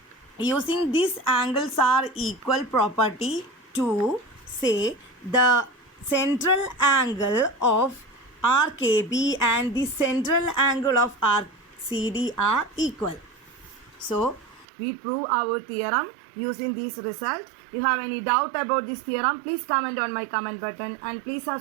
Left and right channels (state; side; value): drops out; left; at 14.7 s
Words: Using this angles are equal property to say the central angle of arc AB and the central angle of arc CD are equal. So, we prove our theorem using this result. You have any doubt about this theorem, please comment on my comment button and please